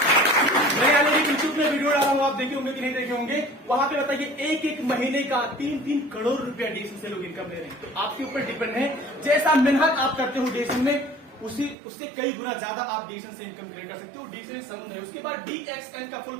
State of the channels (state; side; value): drops out; left; at 11.8 s